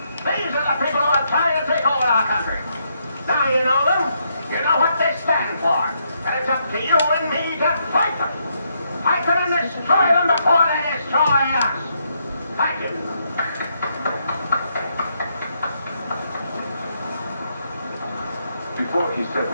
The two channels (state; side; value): inverted; both; correlation -0.77